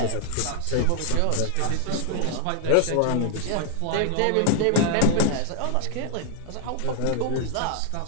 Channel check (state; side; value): different; both; correlation 0.00